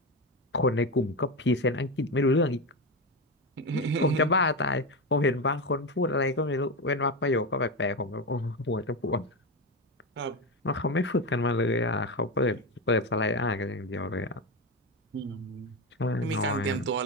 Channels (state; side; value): normal; both; correlation 0.15